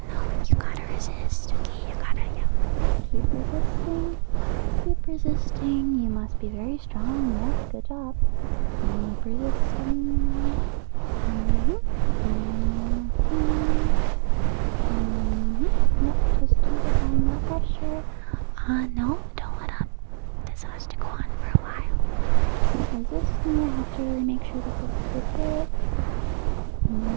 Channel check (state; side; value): silent; left; 62 dB below the other